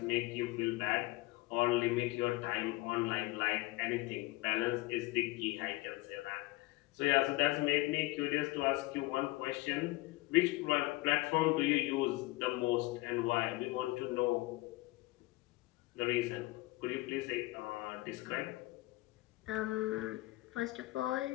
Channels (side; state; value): right; quieter; 20.8 dB